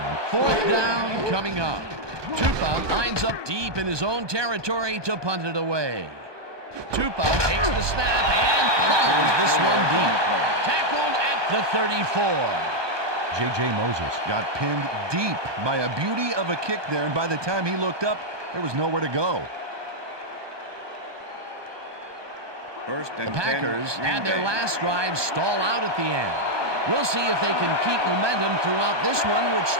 Fourth down coming up. Tupa lines up deep in his own territory to punt it away. Tupa takes the snap and pummels this one deep. Tackled at the 34. J.J. Moses got pinned deep by a beauty of a kick there, and by the time he looked up, there was nowhere to go. The Packers had their last drive stall out at the end. We'll see if they can keep momentum throughout this one, which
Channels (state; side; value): late; left; 1.2 ms